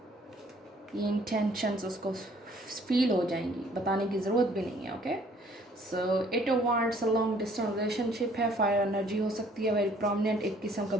ये इंटेंशंस उसको फील हो जाएंगी, बताने की ज़रूरत भी नहीं है, okay. So it wants a long distance relationship है, फायर एनर्जी हो सकती है, वेरी प्रोमिनेंट, एक किस्म का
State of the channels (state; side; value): normal; both; correlation 0.60